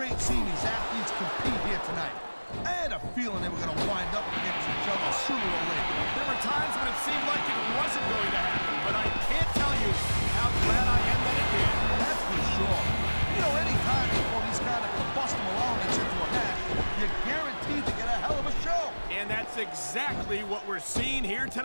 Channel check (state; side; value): inverted; both; correlation -1.00